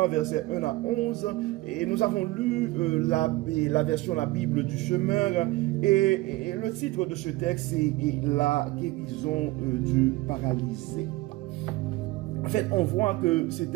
versets 1 à 11, et nous avons lu la version La Bible du Semeur, et le titre de ce texte est La guérison du paralysé. En fait, on voit que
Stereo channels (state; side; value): quieter; left; 19.8 dB